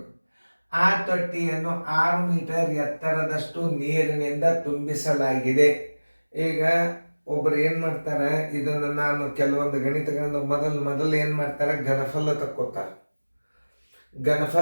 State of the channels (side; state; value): both; inverted; correlation -1.00